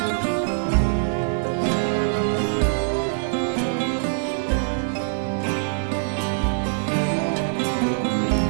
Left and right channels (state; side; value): silent; left; 63 dB below the other